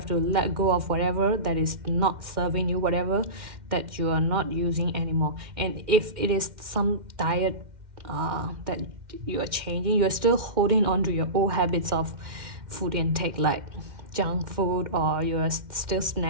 to let go of whatever that is not serving you, whatever that you are not using anymore. And if it is some diet that you are changing, you're still holding on to your old habits of food intake, like junk food, or you're still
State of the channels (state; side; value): late; left; 2.1 ms